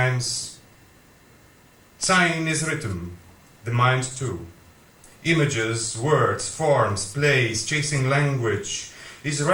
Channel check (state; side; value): identical; both; correlation 1.00